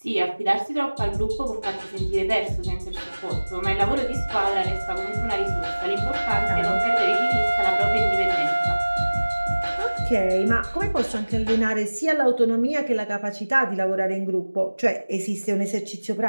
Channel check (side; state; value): both; inverted; correlation -1.00